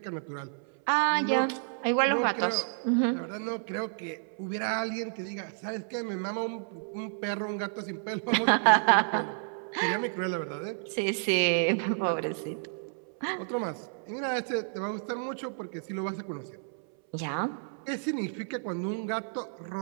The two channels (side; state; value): left; silent; 57 dB below the other